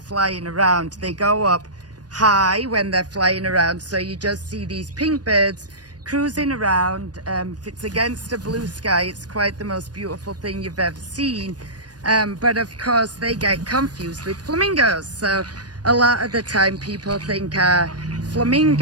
around, they go up high when they're flying around, so you just see these pink birds cruising around. If it's against a blue sky, it's quite the most beautiful thing you've ever seen. But of course they get confused with flamingos, so a lot of the time people think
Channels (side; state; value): left; late; 0.69 ms